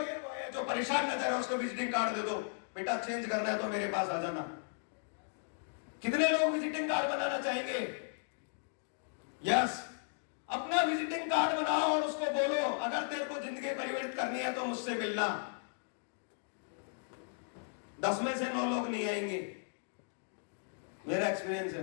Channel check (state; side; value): silent; right; digital silence